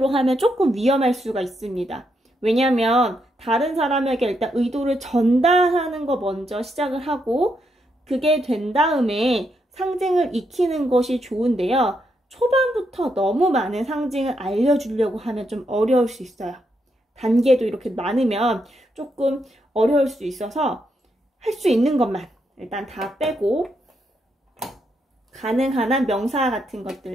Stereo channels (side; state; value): both; normal; correlation 0.80